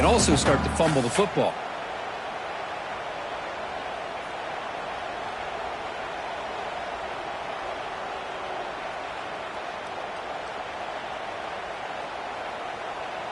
also start to fumble the football.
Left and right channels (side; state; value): both; identical; correlation 1.00